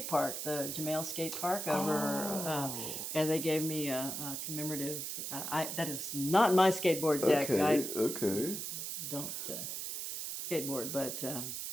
park, the Jamale Skate Park over, and they gave me a commemorative. That is not my skateboard deck. Okay, I okay. don't skateboard, but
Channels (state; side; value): noise; right; hiss, 4 dB below the sound